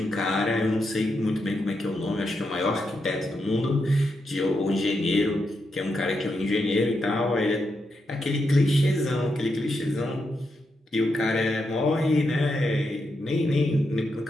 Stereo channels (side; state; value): both; normal; correlation 0.84